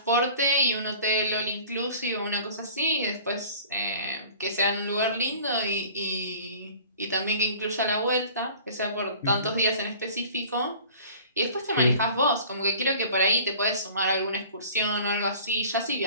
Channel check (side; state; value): both; inverted; correlation -0.46